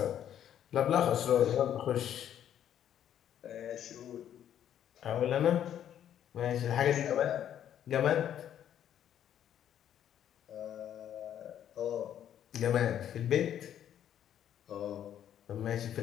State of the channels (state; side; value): quieter; right; 10.2 dB